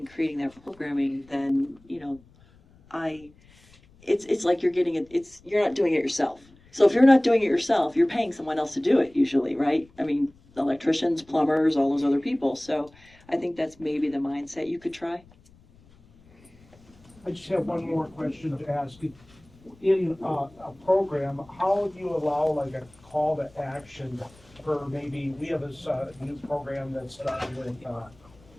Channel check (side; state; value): left; noise; rumble, 27 dB below the sound